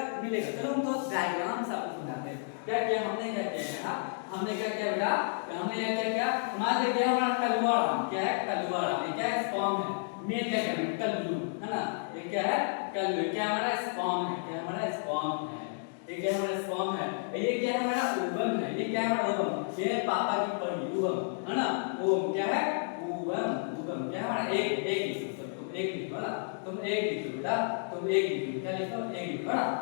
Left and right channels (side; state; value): right; silent; digital silence